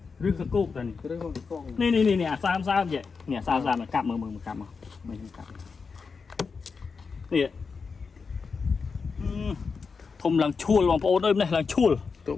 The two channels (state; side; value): quieter; right; 5.1 dB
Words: រឿងសកូកតែនេះរឿងសកូកនេះអាសាមចេះនេះអាសាមកាប់មើលកាប់មកមើលកាប់នេះធំឡើងឈួលបងប្អូនអើយនេះឡើងឈួល